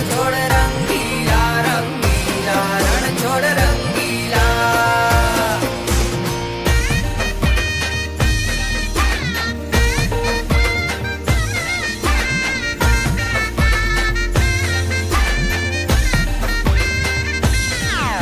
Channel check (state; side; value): identical; both; correlation 1.00